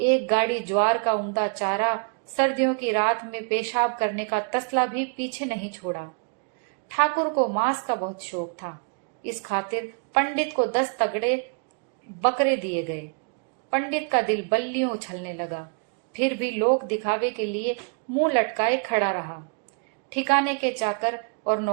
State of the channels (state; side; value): quieter; left; 39.8 dB